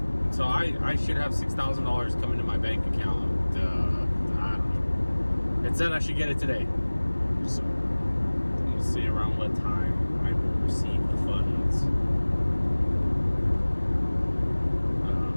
So I should have $6,000 coming to my bank account. I don't know. It said I should get it today. So we'll see around what time I will receive the funds.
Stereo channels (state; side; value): inverted; both; correlation -1.00